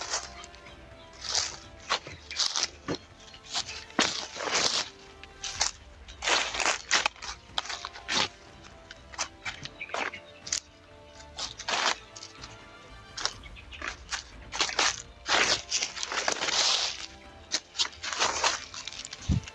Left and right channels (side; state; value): both; identical; correlation 1.00